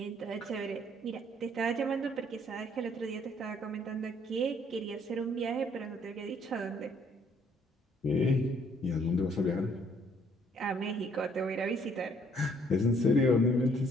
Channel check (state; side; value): normal; both; correlation 0.64